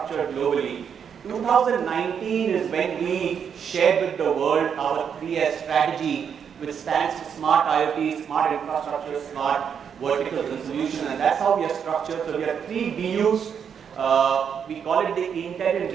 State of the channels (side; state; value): left; quieter; 7.5 dB